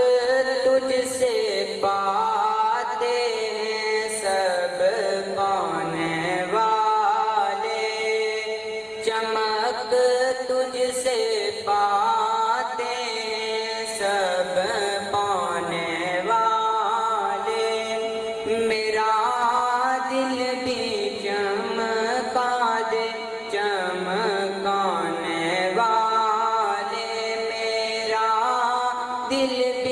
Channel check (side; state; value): both; identical; correlation 1.00